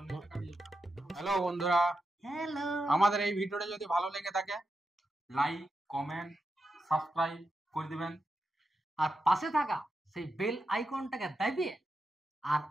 হ্যালো বন্ধুরা, হ্যালো, আমাদের এই ভিডিওটা যদি ভালো লেগে থাকে লাইক, কমেন্ট, সাবস্ক্রাইব করে দিবেন। আর পাশে থাকা সেই বেল আইকনটাকে দাবিয়ে আর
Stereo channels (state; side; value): normal; both; correlation 0.87